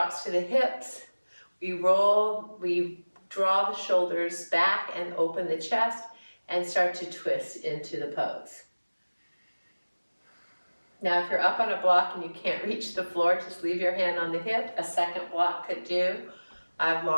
to the hips. We roll, we draw the shoulders back and open the chest and start to twist into the pose. Now, if you're up on a block and you can't reach the floor, just leave your hand on the hip. A second block could do. I have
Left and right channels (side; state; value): both; inverted; correlation -1.00